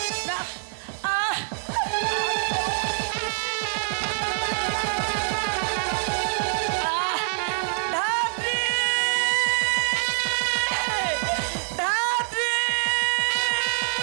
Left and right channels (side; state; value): left; silent; 62 dB below the other